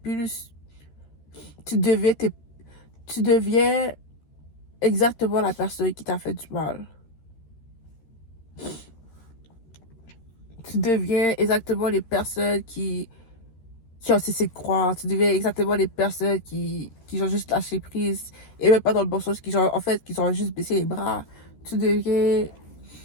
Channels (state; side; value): late; right; 13 ms